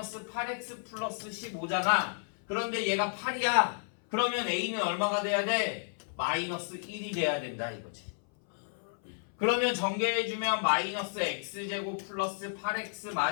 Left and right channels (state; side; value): silent; right; 56 dB below the other